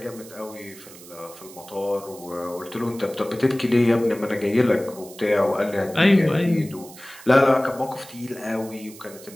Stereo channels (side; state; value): right; noise; hiss, 19 dB below the sound